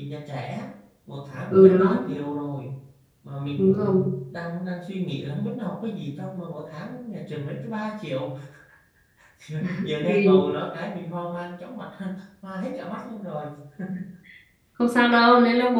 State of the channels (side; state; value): both; identical; correlation 1.00